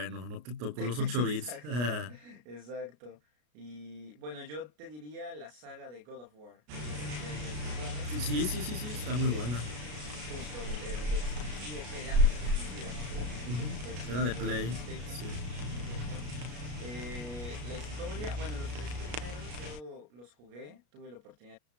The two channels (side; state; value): left; late; 33 ms